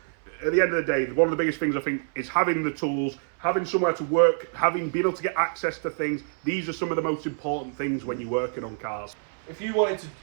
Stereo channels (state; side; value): silent; left; 61 dB below the other